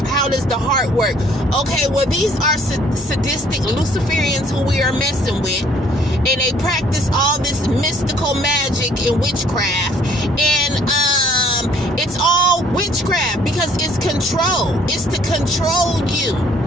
how does the heart work. Okay, well, these are sadistic Luciferians who we are messing with, and they practice all this mystical magic and witchcraft, and it's all witchcraft because it's control. It's to control you.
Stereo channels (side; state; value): both; normal; correlation 0.60